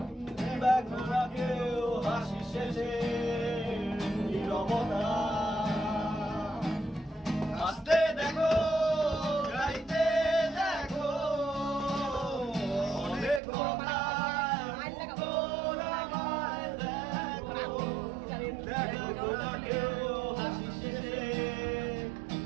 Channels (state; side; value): drops out; left; at 13.4 s